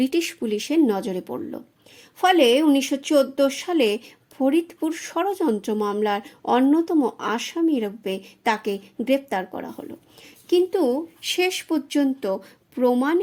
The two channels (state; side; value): identical; both; correlation 1.00